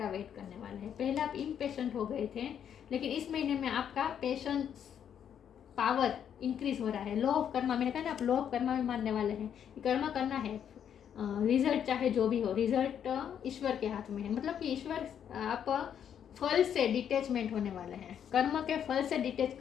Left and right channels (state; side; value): quieter; right; 8.8 dB